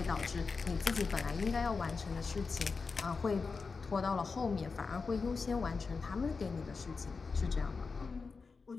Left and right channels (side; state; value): right; quieter; 4.7 dB